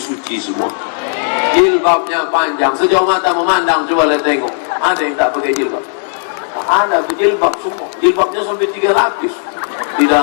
semua. Jilbabnya panjang, sejauh mata memandang, coba lihat tengok. Ada yang tak pakai jilbab? Ada jilbab semua. Jilbabnya sampai 3 lapis. Di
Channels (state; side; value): silent; right; digital silence